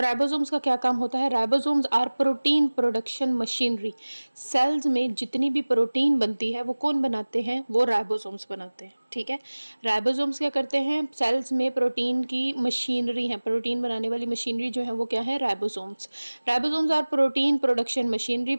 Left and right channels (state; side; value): inverted; both; correlation -1.00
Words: राइबोसोम्स का क्या काम होता है। Ribosomes are protein production machinery. Cells में जितनी भी प्रोटीन बनती है वो कौन बनाते हैं, वो राइबोसोम्स बनाते हैं, ठीक है। राइबोसोम्स क्या करते हैं, सेल्स में प्रोटीन की मशीनरी है, प्रोटीन बनाने वाली मशीनरी जो है वो क्या है, ribosomes. Ribosomes are protein production machinery,